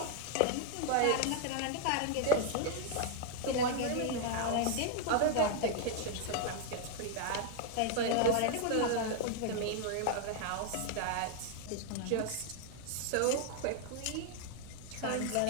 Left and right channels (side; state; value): both; different; correlation 0.00